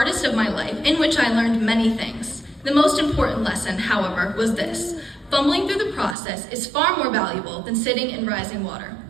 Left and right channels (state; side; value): drops out; left; at 6.2 s